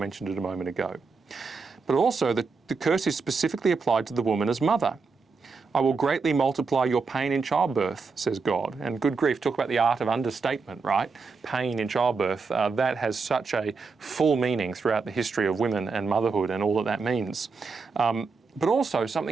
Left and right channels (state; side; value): quieter; left; 4.7 dB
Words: it a moment ago. But also, the curse is specifically applied to the woman as mother. I will greatly multiply your pain in childbirth, says God. And good grief, talk about the art of understatement, right? Pain in childbirth. That has such a full meaning throughout the history of women and motherhood and all that that means. But also,